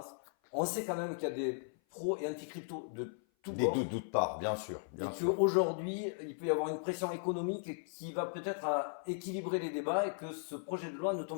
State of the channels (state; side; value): silent; right; 53 dB below the other